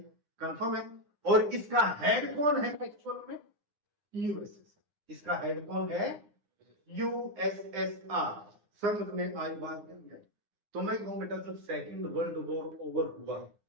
कंफर्म है? और इसका हेड कौन है एक्चुअल में? यूएसएसआर। इसका हेड कौन है? यूएसएसआर। समझ में आई बात या नहीं आई? तो मैं कहूं बेटा, जब सेकेंड वर्ल्ड वॉर ओवर हुआ,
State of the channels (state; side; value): late; left; 9.8 ms